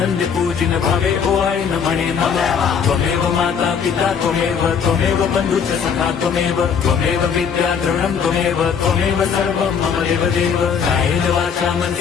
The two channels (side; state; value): right; quieter; 6.8 dB